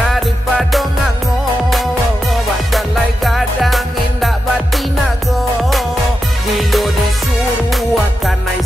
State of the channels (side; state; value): both; normal; correlation 0.88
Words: ngango Badalai gadang indak batinago Dilo disuruh akan naik